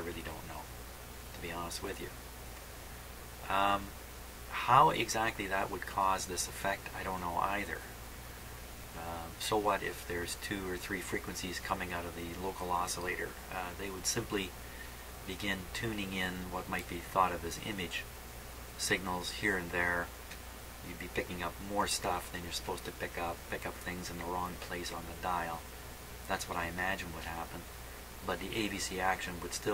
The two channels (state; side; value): identical; both; correlation 1.00